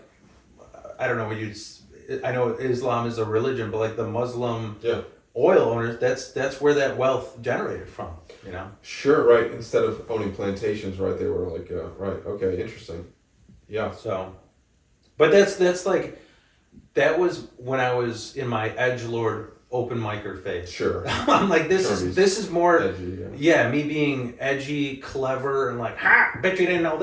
I don't know what you'd. I know Islam is a religion, but like the Muslim Yeah. oil owners, that's where that wealth generated from. You know. Sure, right. Instead of owning plantations, right, they were like, right, okay, interesting. Yeah. So, but that's like, that was when I was in my edgelord open micer phase. Sure. I'm like, this is more, Edgy, yeah. yeah, me being edgy, clever, and like, ha, bet you didn't know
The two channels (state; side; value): identical; both; correlation 1.00